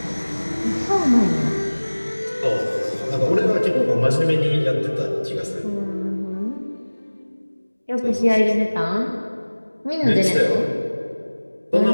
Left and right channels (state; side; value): inverted; both; correlation -1.00